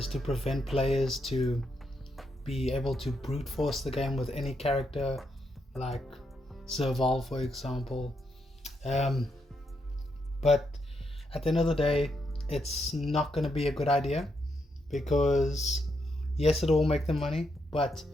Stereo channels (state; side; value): normal; both; correlation 0.80